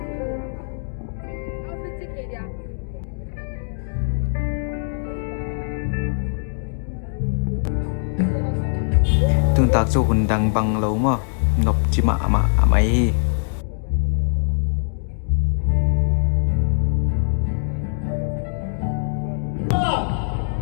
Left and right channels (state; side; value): silent; right; digital silence